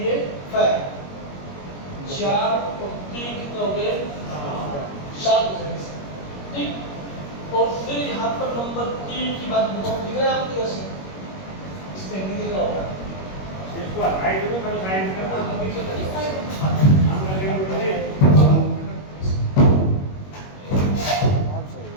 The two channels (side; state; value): right; late; 21 ms